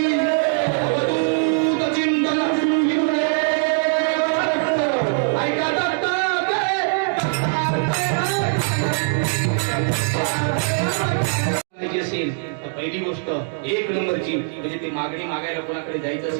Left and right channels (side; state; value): left; silent; digital silence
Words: अवधूत चिंतन ऐका दत्तात्रय असेल तर पहिली गोष्ट 1 नंबरची म्हणजे ते मागणी मागायला कोणाकडे जायचं